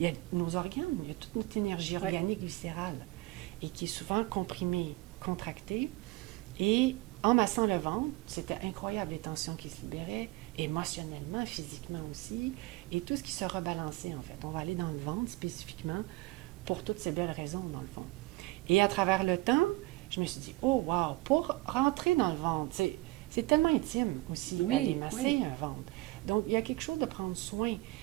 y a nos organes, il y a toute notre énergie organique viscérale, et qui est souvent comprimée, contractée. Et en massant le ventre, c'était incroyable les tensions qui se libéraient, émotionnellement, physiquement aussi, et tout ce qui se rebalançait en fait. On va aller dans le ventre spécifiquement pour toutes ces belles raisons dans le fond. Et à travers le temps, je me suis dit, oh wow, pour rentrer dans le ventre, c'est tellement intime aussi d'aller masser un ventre. Donc il y a quelque chose de prendre soin,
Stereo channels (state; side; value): quieter; left; 20.7 dB